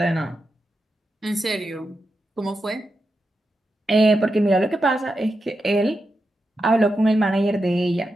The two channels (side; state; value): both; normal; correlation 0.88